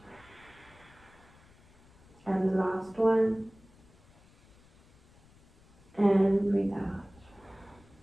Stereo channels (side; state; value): left; noise; rumble, 27 dB below the sound